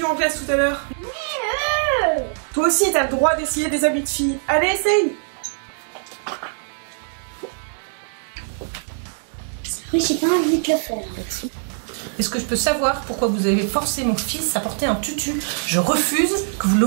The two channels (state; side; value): silent; left; 64 dB below the other